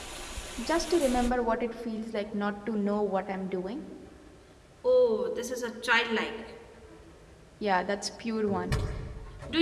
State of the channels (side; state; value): both; identical; correlation 1.00